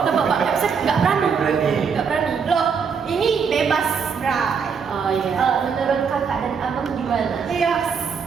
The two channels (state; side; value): quieter; left; 6.2 dB